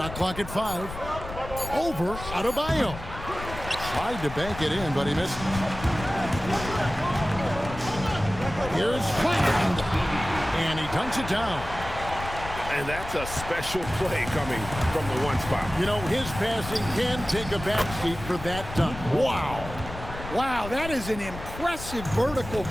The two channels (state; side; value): noise; left; rumble, 11 dB below the sound